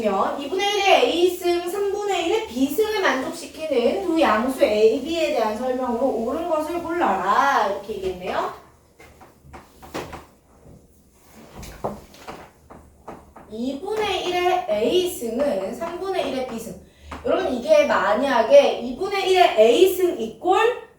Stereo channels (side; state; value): both; identical; correlation 1.00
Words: 2분의 1의 A승, 3분의 1의 B승을 만족시키는 두 양수 A, B에 대한 설명으로 옳은 것을 골라라. 이렇게 얘기했네요. 2분의 1의 A승은 3분의 1의 B승. 여러분 이게 만약에 2분의 1의 A승 이꼴